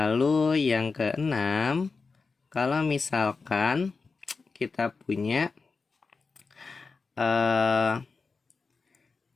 yang keenam, kalau misalkan kita punya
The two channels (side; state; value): right; quieter; 4.5 dB